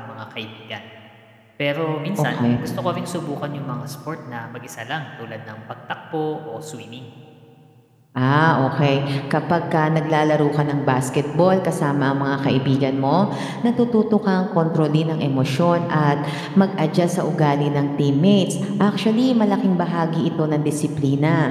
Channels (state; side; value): identical; both; correlation 1.00